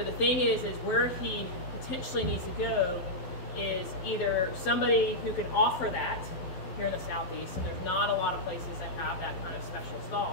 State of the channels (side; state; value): right; late; 12 ms